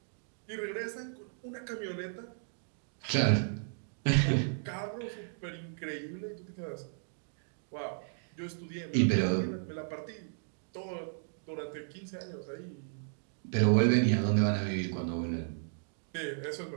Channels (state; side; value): silent; left; digital silence